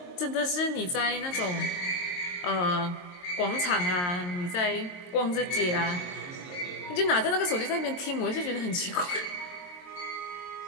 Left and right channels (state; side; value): late; right; 22 ms